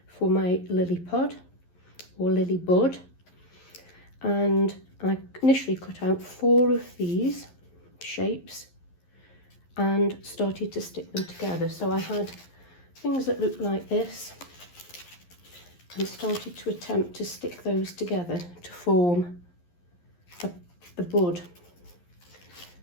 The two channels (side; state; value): right; late; 11 ms